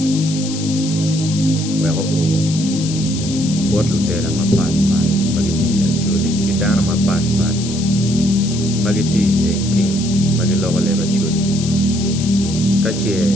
wego o botlu tela mapat magiti Acholi ki dana mapat magiti tek pin magilogo leba Acholi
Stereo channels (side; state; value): left; noise; hiss, 10 dB below the sound